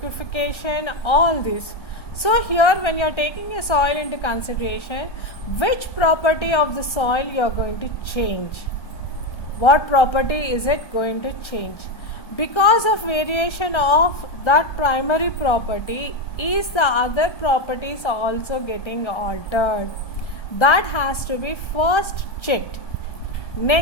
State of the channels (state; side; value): late; right; 1.4 ms